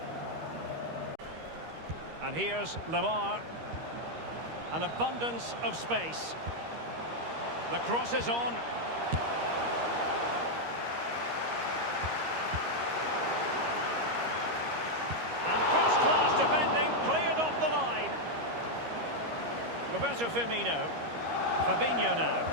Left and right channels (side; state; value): left; late; 13 ms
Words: And here's Lamar. An abundance of space. The cross is on. And first-class defending, cleared off the line. Roberto Firmino. Fabinho now.